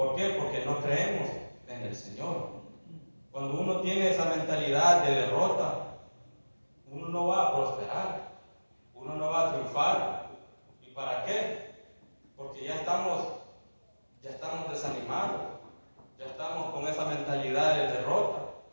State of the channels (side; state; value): both; inverted; correlation -1.00